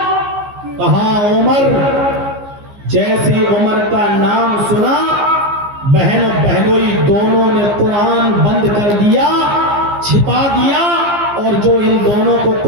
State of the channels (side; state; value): left; late; 15 ms